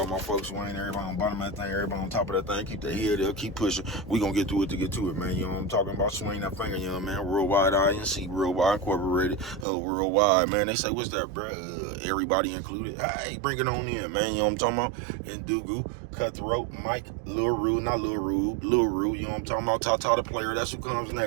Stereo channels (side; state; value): left; drops out; at 9.7 s